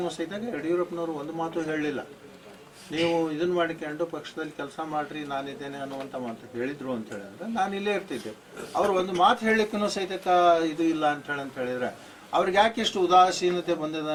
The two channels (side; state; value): both; identical; correlation 1.00